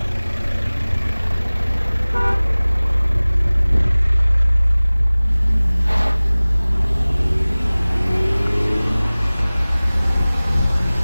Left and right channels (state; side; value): inverted; both; correlation -0.99